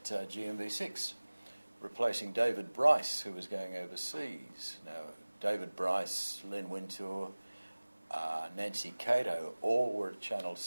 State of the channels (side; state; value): both; inverted; correlation -1.00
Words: GMV6, replacing David Bryce, who was going overseas. Now, David Bryce, Len Wintour, Nancy Cato, all were at Channel